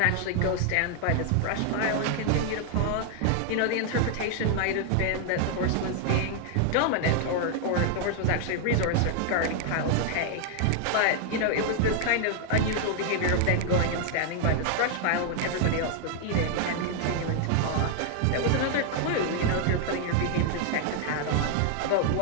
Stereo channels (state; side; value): different; both; correlation 0.00